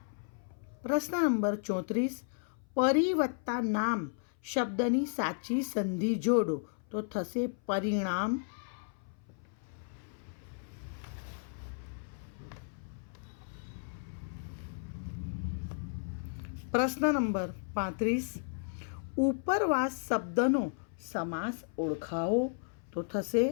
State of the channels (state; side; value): silent; right; 55 dB below the other